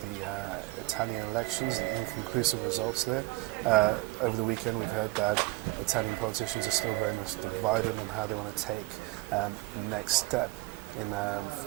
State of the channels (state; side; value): quieter; left; 21.6 dB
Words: Italian elections, the inconclusive results there. Over the weekend, we've heard that Italian politicians are still very much divided on how they want to take the next step in